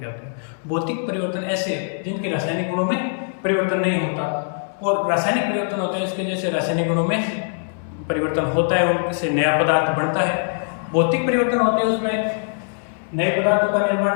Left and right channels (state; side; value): silent; right; digital silence